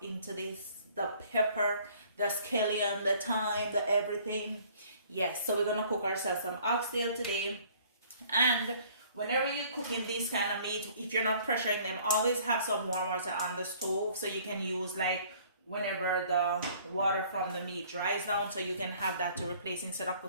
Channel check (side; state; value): both; inverted; correlation -0.56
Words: into this. The pepper, the scallion, the thyme, the everything. Yes, so we're gonna cook ourselves some oxtail today. And whenever you're cooking this kind of meat, if you're not pressuring them, always have some warm water on the stove so you can use like whenever the water from the meat dries down, so you can have that to replace instead of